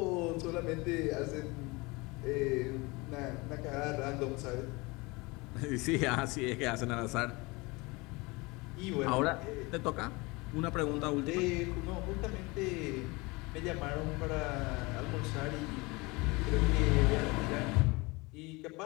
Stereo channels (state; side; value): quieter; right; 25.0 dB